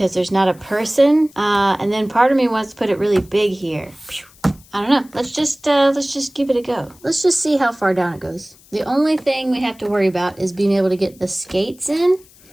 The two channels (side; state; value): left; noise; hiss, 26 dB below the sound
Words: there's not a person. And then part of me wants to put it really big here. I don't know. Let's just give it a go. Let's just see how far down it goes. The only thing we have to worry about is being able to get the skates in.